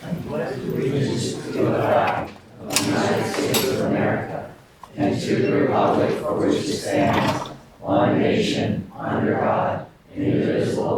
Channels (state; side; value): identical; both; correlation 1.00